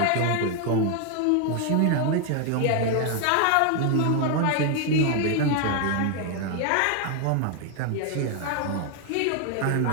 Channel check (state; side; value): different; both; correlation 0.01